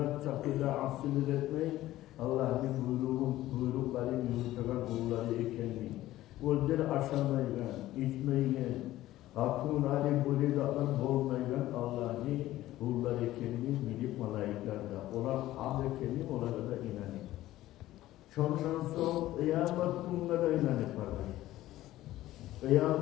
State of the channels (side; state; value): right; quieter; 15.3 dB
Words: çapında asıl etmeyi Allah'ın buyrukları yürütülen kulları ekenmeyi. Özleri aşamayla, içmeyle, hatun ali bulidatlar bolmayla Allah'ın kulları ekenmeyi bilip malaiklarda. Onlar ham ekenmeyi onlara da inanır. Şondan sonra kıyamet gününe de inanır vardır.